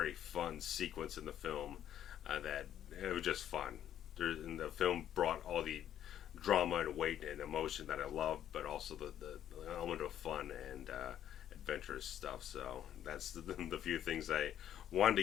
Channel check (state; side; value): quieter; right; 10.7 dB